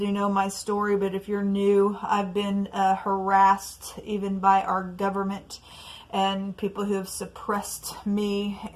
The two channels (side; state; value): both; identical; correlation 1.00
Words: know my story, but if you're new, I've been harassed even by our government and people who have suppressed me